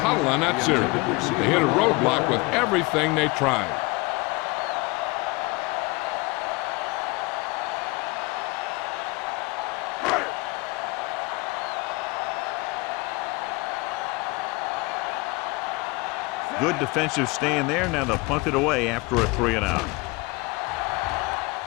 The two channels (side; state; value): right; quieter; 24.8 dB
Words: on that series. They hit a roadblock with everything they tried. Good defensive stand there. Now they'll punt it away after a 3-and-out.